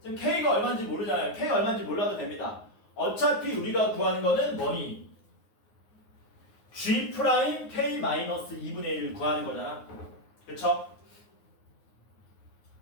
지금 K가 얼마인지 모르잖아요. K가 얼마인지 몰라도 됩니다. 어차피 우리가 구하는 거는 뭐니? G 프라임 K 마이너스 2분의 1을 구하는 거잖아. 그쵸?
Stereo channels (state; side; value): late; right; 9.6 ms